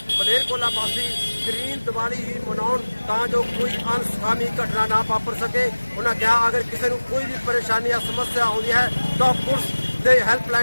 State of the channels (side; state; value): both; inverted; correlation -1.00